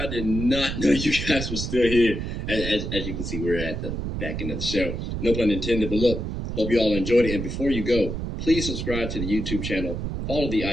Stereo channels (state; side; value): noise; right; rumble, 4 dB below the sound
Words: I did not know you guys were still here. As you can see, we're at the back end of the show. No pun intended, but look, hope you all enjoyed it. And before you go, please subscribe to the YouTube channel, follow the